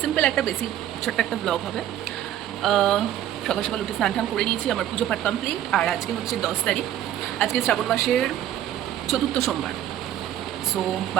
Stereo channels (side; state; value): left; quieter; 11.7 dB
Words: সিম্পল একটা বেসিক ছোট্ট একটা ব্লগ হবে। সকাল সকাল উঠে স্নান টান করে নিয়েছি, আমার পুজো পাঠ কমপ্লিট। আর আজকে হচ্ছে 10 তারিখ, আজকে শ্রাবণ মাসের চতুর্থ সোমবার। সো